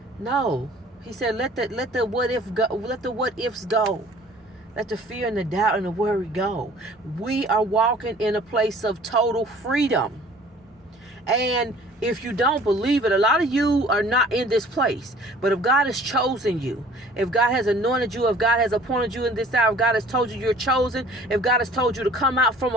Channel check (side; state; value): both; normal; correlation 0.51